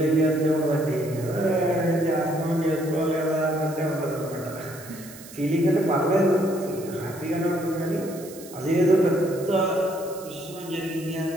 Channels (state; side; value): noise; right; hiss, 17 dB below the sound